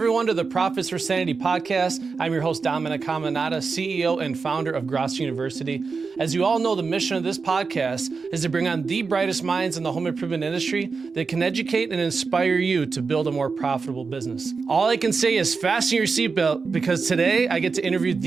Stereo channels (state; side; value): quieter; left; 4.8 dB